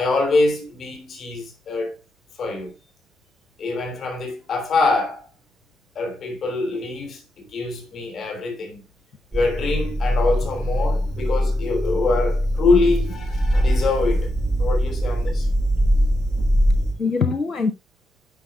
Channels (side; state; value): both; normal; correlation 0.85